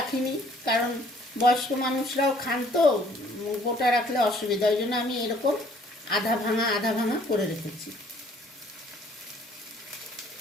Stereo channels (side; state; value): both; normal; correlation 0.60